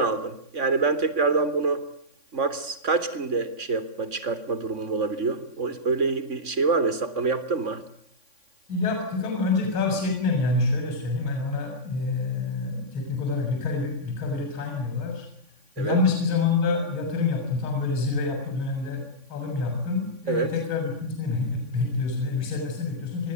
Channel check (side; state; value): left; late; 3.6 ms